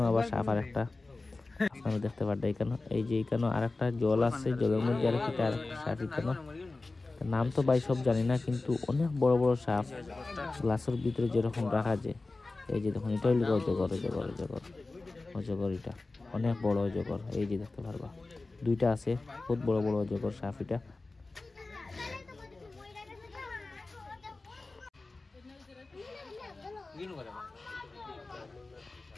আবার সাপ আর একটা আপনারা দেখতে পারবেন এখানে। এই যে এখানে আরেকটা জল আছে, জলের মধ্যে আরেকটা সাপ এখানে। নাম তো ভাই সব জানি না, কিন্তু অনেক বড় বড় সাপ গ্লাসের ভিতরে যেরকম রাখা যায়। এই যে দেখুন, এটা হইল অজগর, এটা অনেক বড় অজগর। এই যে দেখতে পারবা দুইটা আছে, বহুত বড় বড় অজগর সাপ এটা।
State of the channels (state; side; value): quieter; right; 3.4 dB